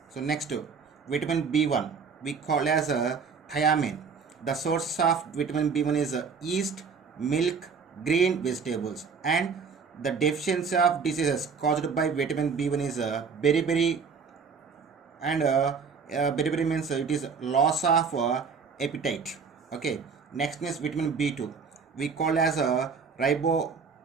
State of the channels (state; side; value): quieter; left; 5.6 dB